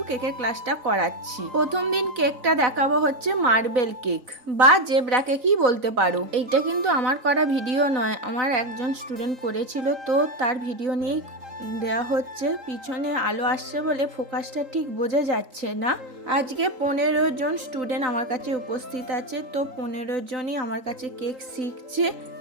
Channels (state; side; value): late; left; 4.0 ms